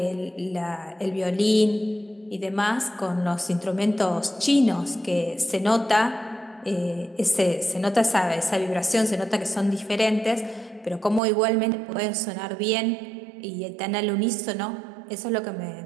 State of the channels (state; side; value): drops out; left; at 11.2 s